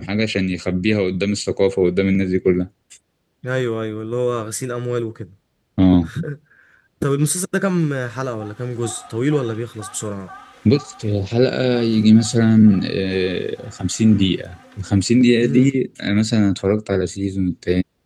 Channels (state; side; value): identical; both; correlation 1.00